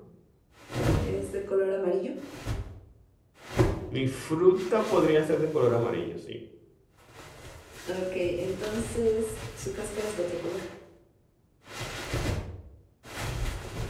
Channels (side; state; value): both; identical; correlation 1.00